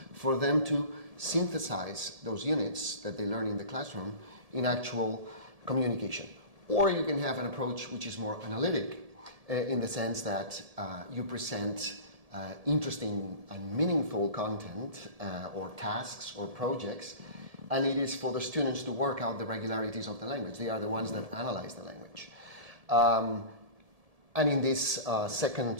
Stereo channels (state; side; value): late; left; 1.7 ms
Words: for them to synthesize those units that they learn in the classroom in actual communication. Or you can have an approach which is more analytic, in the sense that you present interesting and meaningful content or tasks or projects, and it is for the students to work out the regularities of the language. They are the ones that analyze the language. And in this